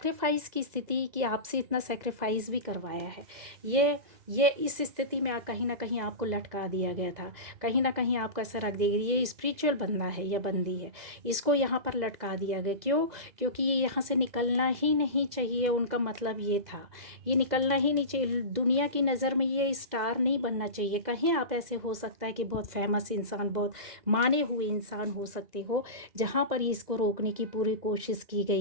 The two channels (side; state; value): left; late; 2.0 ms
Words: की स्थिति कि आपसे इतना सैक्रिफाइस भी करवाया है। ये इस स्थिति में कहीं ना कहीं आपको लटका दिया गया था, कहीं ना कहीं आपको ऐसा रख दिया गया, ये स्पिरिचुअल बंदा है या बंदी है, इसको यहाँ पर लटका दिया गया। क्यों? क्योंकि ये यहाँ से निकलना ही नहीं चाहिए, उनका मतलब ये था, ये निकलना ही नहीं चाहिए। दुनिया की नज़र में ये स्टार नहीं बनना चाहिए। कहीं आप ऐसे हो सकता है कि बहुत फेमस इंसान, बहुत माने हुए इंसान हो सकते हो, जहाँ पर इसको रोकने की पूरी कोशिश की